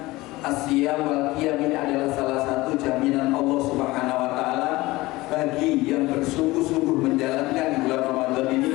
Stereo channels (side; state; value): right; quieter; 19.9 dB